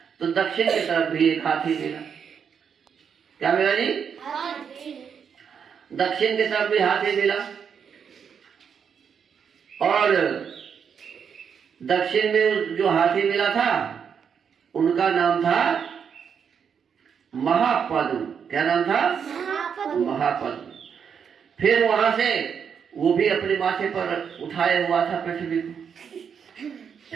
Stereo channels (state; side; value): quieter; left; 7.1 dB